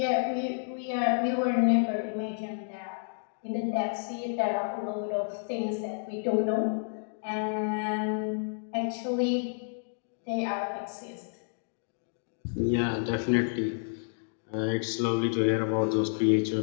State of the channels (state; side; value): silent; right; digital silence